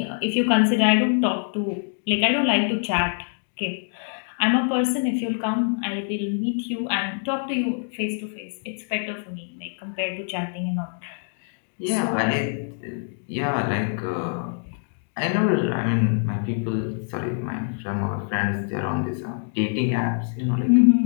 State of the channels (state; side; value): silent; right; 62 dB below the other